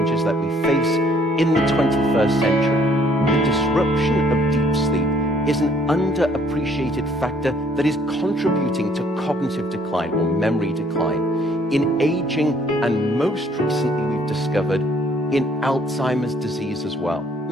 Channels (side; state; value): both; normal; correlation 0.62